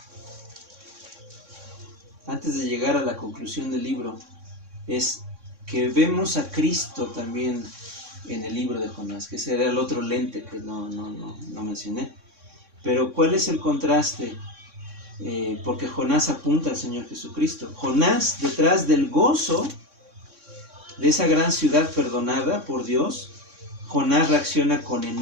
antes de llegar a la conclusión del libro, es que vemos a Cristo también en el libro de Jonás, que ese era el otro lente que no mencioné. Pero ¿cuál es el contraste? Porque Jonás apunta al Señor Jesucristo. Jonás, detrás del gozo de esa gran ciudad perdonada por Dios, Jonás reacciona con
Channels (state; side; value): late; left; 3.6 ms